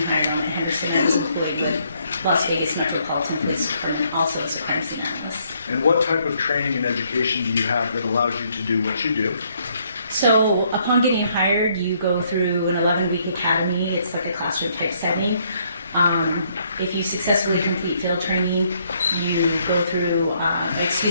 hired on at Henderson, I was employed with Las Vegas Metropolitan Police Department, also as a crime scene analyst. And what type of training and education do you have that allows you to do what you do? So upon getting hired, you go through an 11-week academy. It's like a classroom type setting. If you successfully complete field training, you go through,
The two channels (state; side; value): inverted; both; correlation -0.69